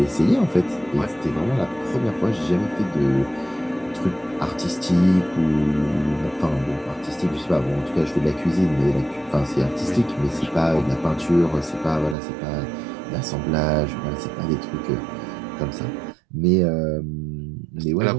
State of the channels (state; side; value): drops out; left; at 12.2 s